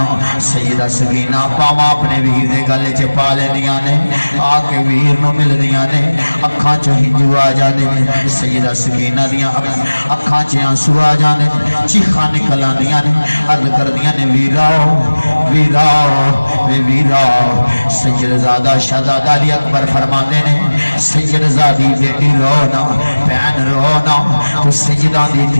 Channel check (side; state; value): both; inverted; correlation -1.00